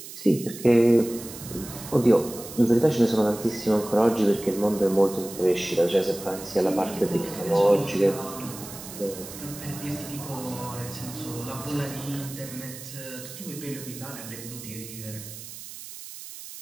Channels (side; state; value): right; noise; hiss, 13 dB below the sound